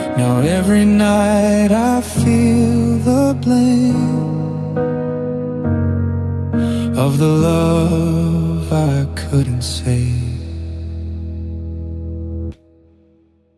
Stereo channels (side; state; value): both; identical; correlation 1.00